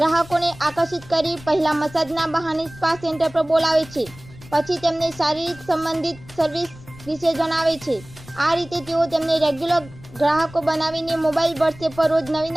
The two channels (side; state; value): left; noise; rumble, 19 dB below the sound